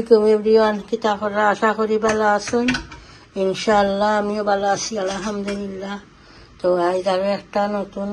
এভরিওয়ান, কিতা করা? আশা করি ভালো আছেন। ইনশাআল্লাহ আমিও ভালো আছি, আলহামদুলিল্লাহ। তো আজ আরও একটা নতুন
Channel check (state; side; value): identical; both; correlation 1.00